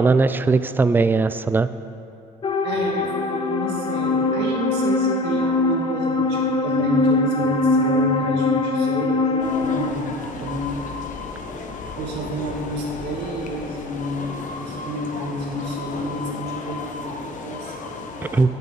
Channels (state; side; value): normal; both; correlation 0.44